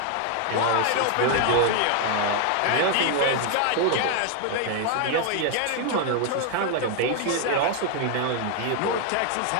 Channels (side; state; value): both; different; correlation 0.00